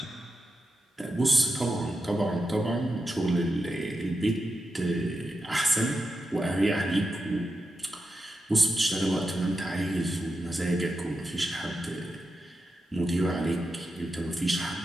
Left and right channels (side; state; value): both; normal; correlation 0.88